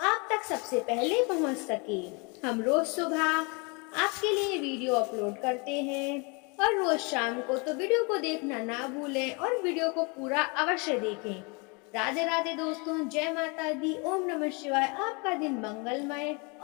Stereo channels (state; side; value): quieter; right; 31.3 dB